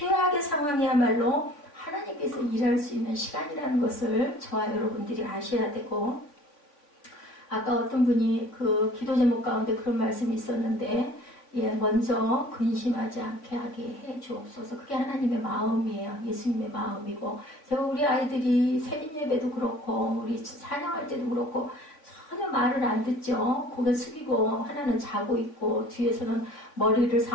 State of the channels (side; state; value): right; late; 3.5 ms